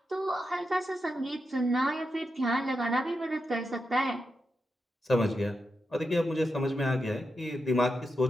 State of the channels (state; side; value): normal; both; correlation 0.87